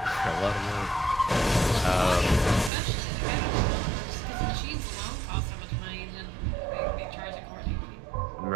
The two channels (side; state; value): left; drops out; at 2.7 s